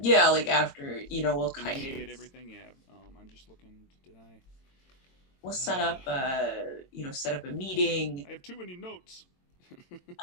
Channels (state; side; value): late; right; 22 ms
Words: Yeah, like after, we'll kind initiate of everything. Yeah, I'm just looking. Did I? we'll set up set up a meeting. I have too many notes.